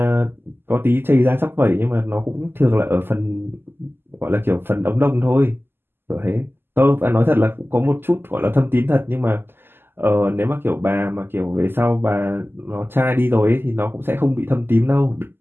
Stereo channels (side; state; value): left; late; 0.10 ms